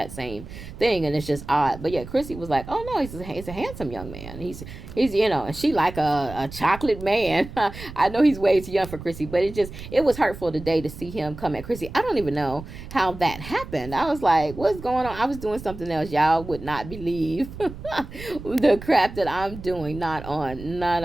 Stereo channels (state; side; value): noise; right; rumble, 13 dB below the sound